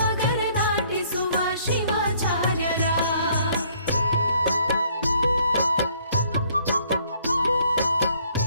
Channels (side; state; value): both; inverted; correlation -0.62